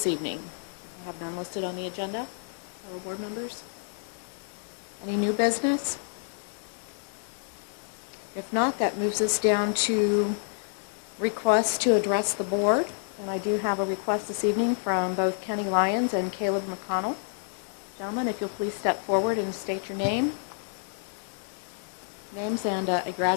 evening? I have none listed on the agenda. Fellow board members? Any new business? If not, that moves us down to requests to address the board. And I do have a request this evening from both Kenny Lyons and Caleb McConnell. Gentlemen, if you'll please step forward and state your names and your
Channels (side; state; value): right; silent; 59 dB below the other